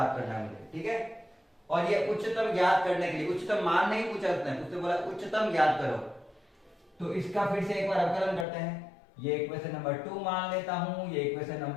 करना है मुझे। ठीक है, और ये उच्चतम ज्ञात करने के लिए, उच्चतम मान नहीं पूछा उसने बोला उच्चतम ज्ञात करो, तो इसका फिर से एक बार अवकलन करते हैं। ये इक्वेशन नंबर 2 मान लेता हूं, ये इक्वेशन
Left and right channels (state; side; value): drops out; right; at 8.5 s